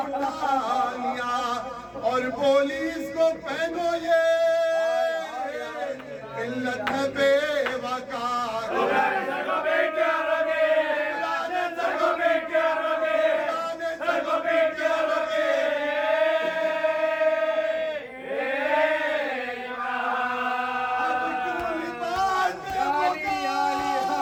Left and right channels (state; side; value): identical; both; correlation 1.00